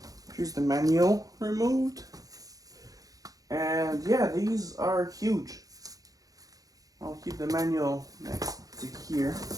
Here's the manual removed. And yeah, these are huge. I'll keep the manual next to here.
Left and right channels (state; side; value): late; left; 0.17 ms